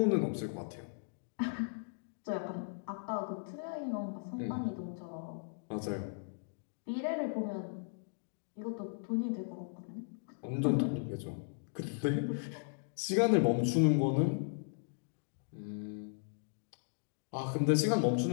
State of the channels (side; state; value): right; silent; digital silence